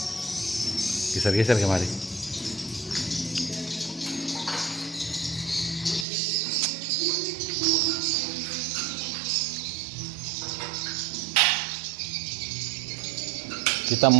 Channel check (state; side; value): drops out; left; at 6.1 s